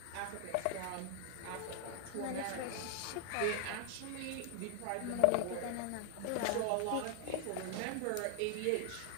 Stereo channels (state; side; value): different; both; correlation 0.00